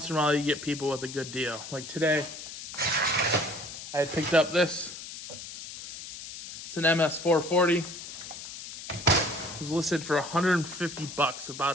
in a while you get people with a good deal. Like today, I had picked up this. It's an MS440. It was listed for $150, about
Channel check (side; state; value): left; noise; hiss, 11 dB below the sound